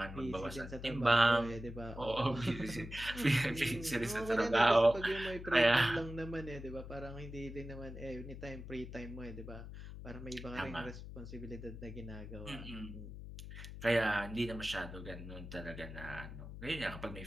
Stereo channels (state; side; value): noise; left; hum, 11 dB below the sound